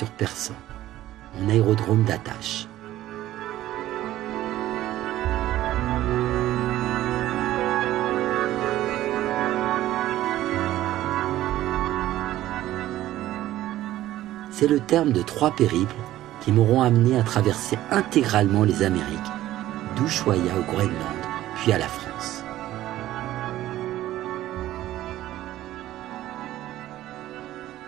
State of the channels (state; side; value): quieter; left; 14.3 dB